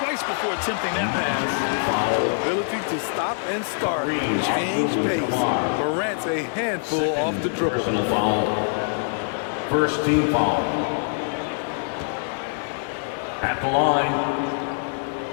before attempting that pass. Ability to stop and start. Change pace. Morant's a handful off the dribble. Personal foul. First team foul. At the line,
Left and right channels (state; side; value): silent; right; 63 dB below the other